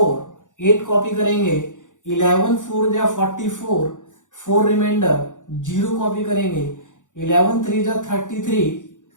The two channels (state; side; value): late; right; 0.86 ms